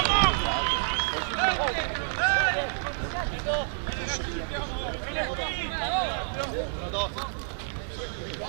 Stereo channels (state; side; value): silent; left; 59 dB below the other